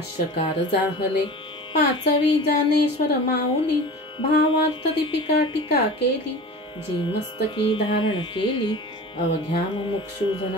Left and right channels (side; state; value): both; normal; correlation 0.36